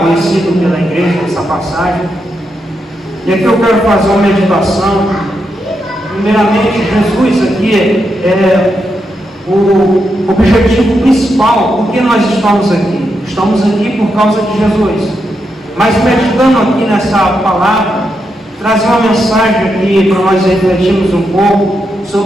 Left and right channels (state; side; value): normal; both; correlation 0.84